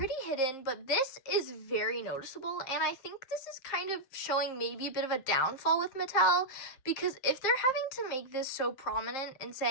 hidden, but this is very noticeable. And I think this is kind of showing maybe a bit of a downfall with Mattel, because if they're having to make this so prominent and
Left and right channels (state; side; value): late; right; 7.5 ms